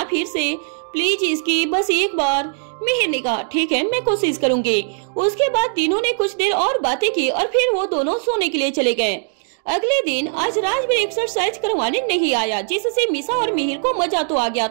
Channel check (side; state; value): left; silent; digital silence